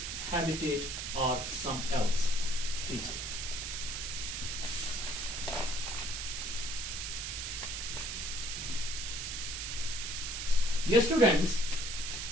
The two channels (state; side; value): noise; right; hiss, 4 dB below the sound